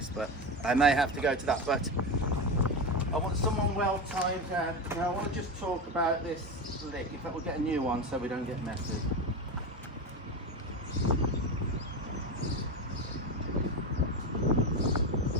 but I may have to go to that. But I want someone well timed down. Now I want to just talk about this lick. In fact, we'll get a new one so we don't get messy.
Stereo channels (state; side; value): normal; both; correlation 0.19